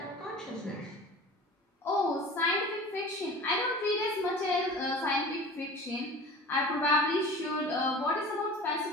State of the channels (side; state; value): both; normal; correlation 0.39